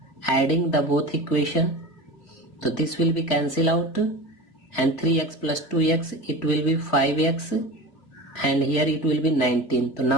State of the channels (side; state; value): right; late; 3.7 ms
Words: adding the both equation, so this will be cancel out, and 3x plus 2x, it will be 5x, and here it will be 19. So